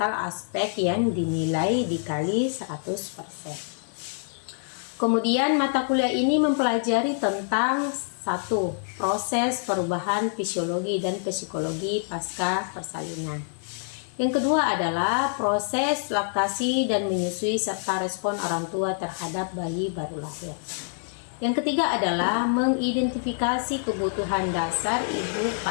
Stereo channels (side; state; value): right; silent; digital silence